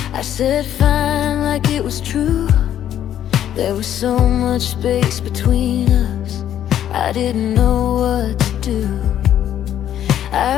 I said fine, like it was true. There was so much space between us, I didn't know what to do.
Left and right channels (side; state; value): right; quieter; 10.8 dB